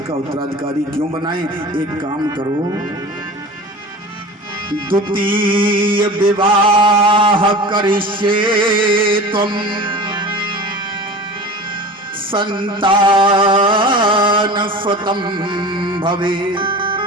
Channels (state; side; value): normal; both; correlation 0.36